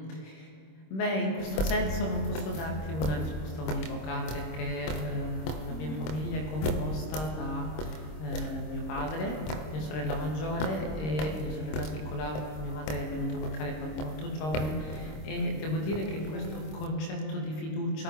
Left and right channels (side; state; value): right; late; 26 ms